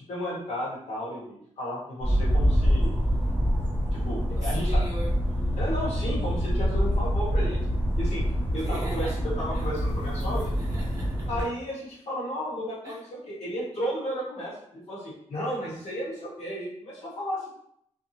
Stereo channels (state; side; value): normal; both; correlation 0.86